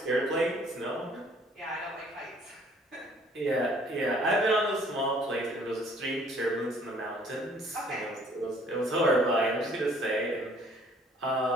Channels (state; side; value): normal; both; correlation 0.58